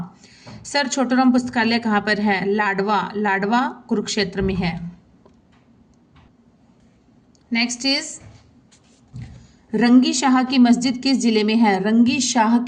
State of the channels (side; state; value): both; identical; correlation 1.00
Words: सर छोटूराम पुस्तकालय कहाँ पर है? लाडवा। लाडवा कुरुक्षेत्र में है। नेक्स्ट इज रंगी शाह की मस्जिद किस जिले में है? रंगी शाह